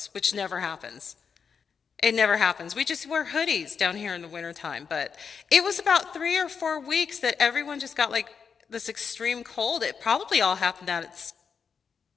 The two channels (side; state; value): right; quieter; 6.3 dB